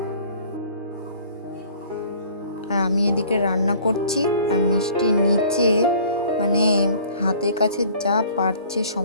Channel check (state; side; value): inverted; both; correlation -0.51